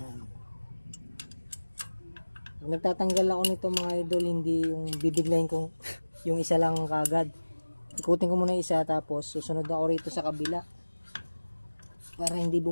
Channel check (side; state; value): both; inverted; correlation -1.00